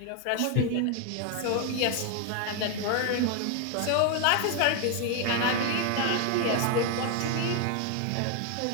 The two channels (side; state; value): both; different; correlation 0.01